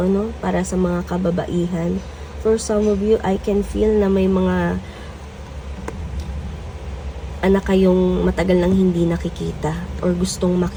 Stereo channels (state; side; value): identical; both; correlation 1.00